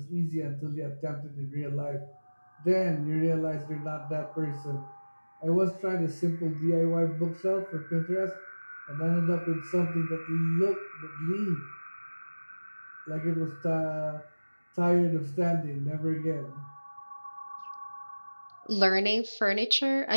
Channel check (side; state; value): both; inverted; correlation -1.00